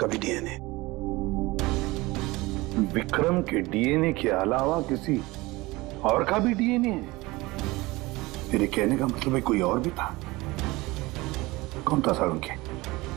भी डीएनए। विक्रम के डीएनए के अलावा किसी और का भी डीएनए है? मेरे कहने का मतलब है कोई और भी था। कौन था सर उनके?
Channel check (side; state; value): left; quieter; 21.3 dB